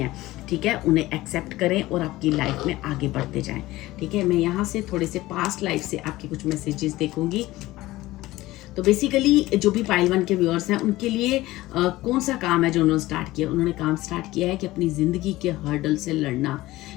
ठीक है, उन्हें एक्सेप्ट करें और आपकी लाइफ में आगे बढ़ते जाएं। ठीक है, मैं यहाँ से थोड़े से पास्ट लाइफ से आपके कुछ मैसेजेस देखूंगी। तो बेसिकली जो भी पाइल 1 के व्यूअर्स हैं, उनके लिए कौन सा काम है जो उन्होंने स्टार्ट किया? उन्होंने काम स्टार्ट किया है कि अपनी ज़िंदगी के हर्डल से लड़ना,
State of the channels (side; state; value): right; quieter; 17.7 dB